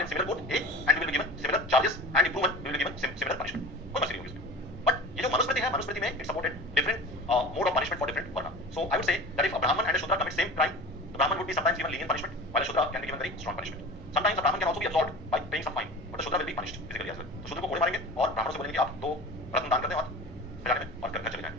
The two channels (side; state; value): both; normal; correlation 0.36